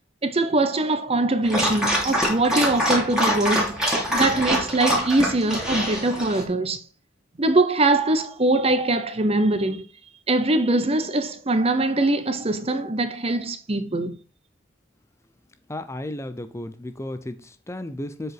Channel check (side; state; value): both; normal; correlation 0.42